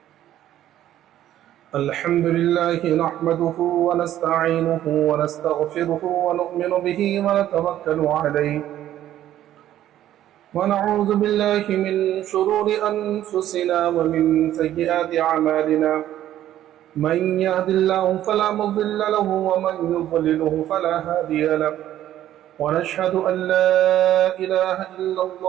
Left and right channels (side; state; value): left; quieter; 12.4 dB